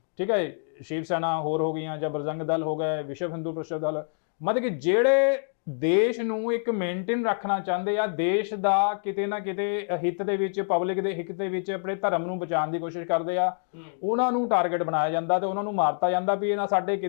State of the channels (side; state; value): right; silent; digital silence